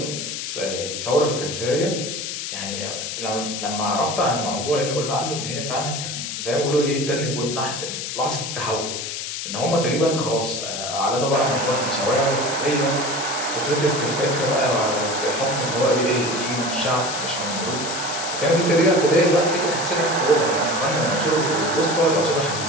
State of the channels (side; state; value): left; noise; hiss, 5 dB below the sound